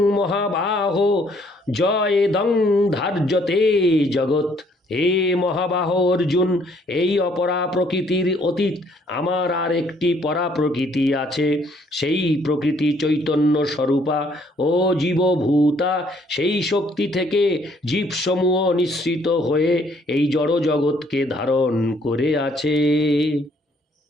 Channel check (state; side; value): normal; both; correlation 0.65